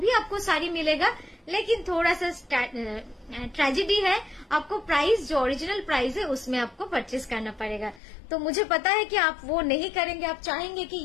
भी आपको साड़ी मिलेगा, लेकिन थोड़ा सा ट्रेजेडी है, आपको प्राइस जो ओरिजिनल प्राइस है उसमें आपको परचेस करना पड़ेगा। तो मुझे पता है कि आप वो नहीं करेंगे, आप चाहेंगे कि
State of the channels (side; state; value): right; drops out; at 8.0 s